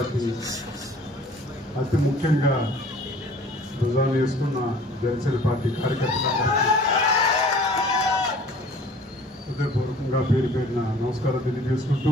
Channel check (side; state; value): both; normal; correlation 0.50